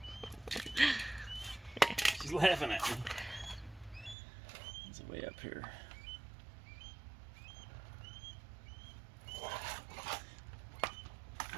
She's laughing at me. There's a way up here.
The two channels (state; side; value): drops out; left; at 4.2 s